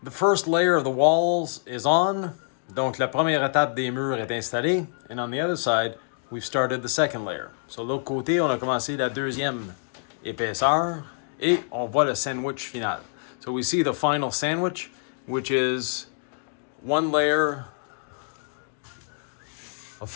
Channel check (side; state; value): right; silent; digital silence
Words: The first layer of the walls is on. Donc la première étape des murs est installée. And on the other side, we've started the second layer. So de l'autre côté, on a commencé la deuxième épaisseur et on voit le sandwich final. So we see the final sandwich, which is one layer of